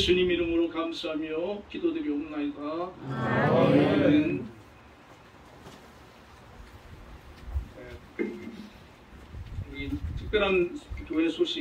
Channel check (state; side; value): identical; both; correlation 1.00